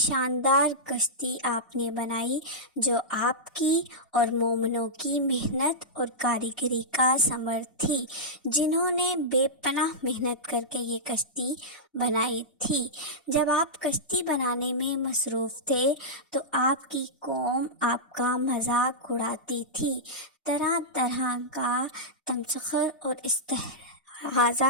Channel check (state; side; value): normal; both; correlation -0.11